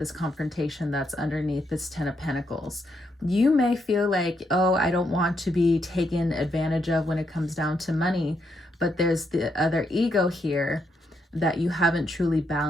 confrontation that's underneath this 10 of Pentacles. You may feel like, oh, I don't want to be taken advantage of when it comes down to money, but there's the other ego here that you haven't truly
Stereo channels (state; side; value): normal; both; correlation 0.78